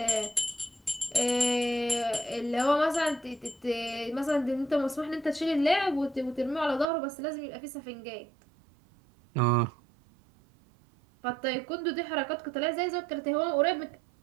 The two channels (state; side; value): drops out; left; at 6.9 s